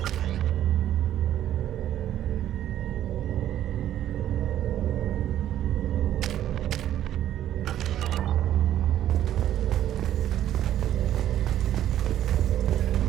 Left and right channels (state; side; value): quieter; left; 11.7 dB